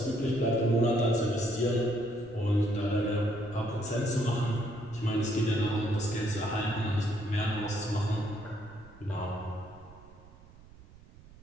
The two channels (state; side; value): noise; right; rumble, 21 dB below the sound